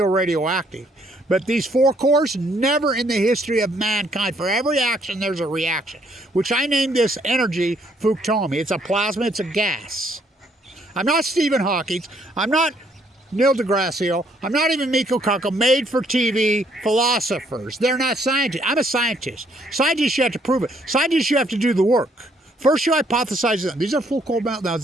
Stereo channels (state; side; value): normal; both; correlation 0.68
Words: radioactive. But these 4 cores, never in the history of mankind, for every action there's a reaction, which I named this energy Fukushima. It's a plasma, it's a gas. I'm not Stephen Hawking, I'm not Neil deGrasse, I'm not even Miko Kaku, made for TV philosophers. They're not scientists. I'm a scientist. Scientists, you have to prove it. Scientists, you have to do the work. First, you hypothesize them. These are full cold meltdowns.